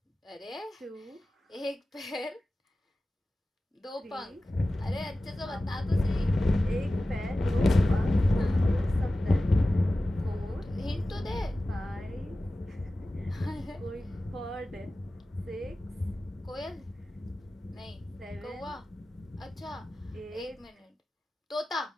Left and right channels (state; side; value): normal; both; correlation 0.95